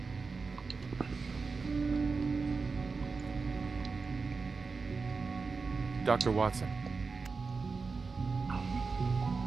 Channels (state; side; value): quieter; left; 4.6 dB